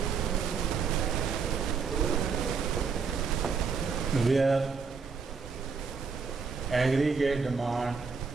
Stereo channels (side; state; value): left; quieter; 5.4 dB